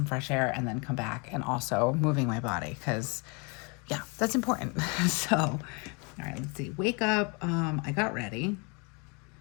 fresh air and then come back and also moving my body because yeah, that's important. So, all right, let's see. Wake up. I got ready.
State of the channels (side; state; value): right; quieter; 32.2 dB